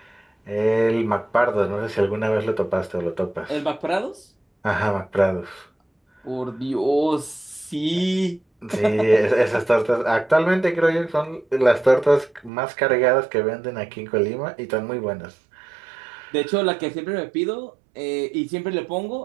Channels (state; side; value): drops out; left; at 12.5 s